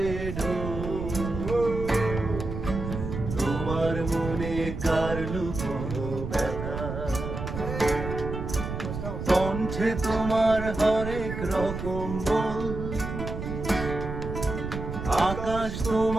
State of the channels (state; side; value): noise; right; rumble, 6 dB below the sound